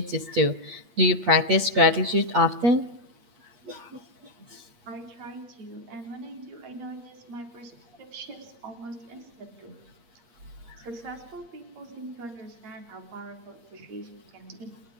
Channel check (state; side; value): late; left; 8.6 ms